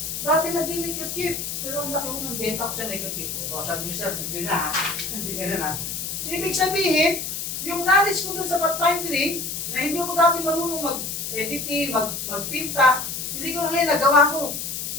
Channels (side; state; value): left; noise; hiss, 4 dB below the sound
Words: dati nag-neckerchief, pero ang laki ko ng benta ko sa neckerchief. O sabi niyo sir, bigli na ha, hindi ka na. So ibig sabihin, yung knowledge ko doon sa pathfinding, na hindi ako dati marunong mag-editing, magpinta, hindi ko ngayon nagawa ko.